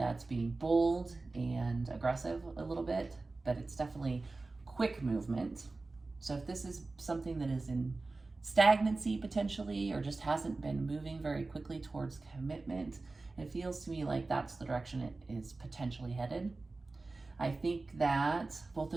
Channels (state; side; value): quieter; left; 3.5 dB